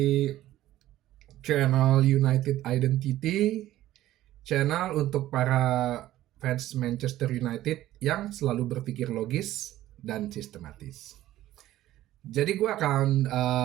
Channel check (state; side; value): quieter; left; 14.4 dB